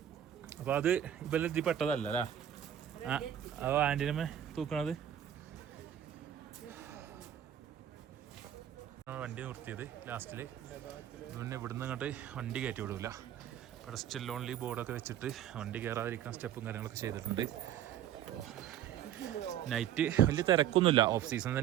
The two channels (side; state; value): left; quieter; 10.6 dB